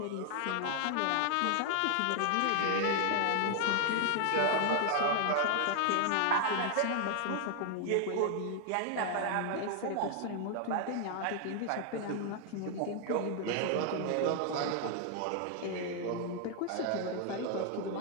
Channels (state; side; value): different; both; correlation 0.00